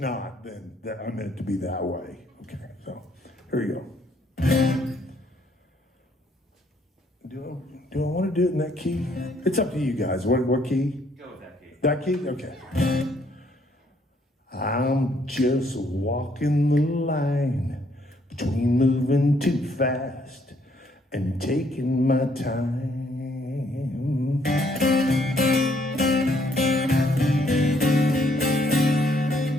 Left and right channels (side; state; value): both; normal; correlation 0.68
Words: then I meant it to be that way. Okay, so here you go. Do I want to do it in that key? It's up to you guys. What key? Go with that key. That key? Okay. I'm just walking the line between moving too fast and taking my time.